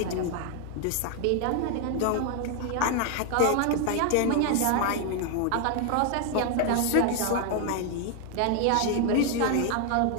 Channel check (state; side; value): different; both; correlation 0.00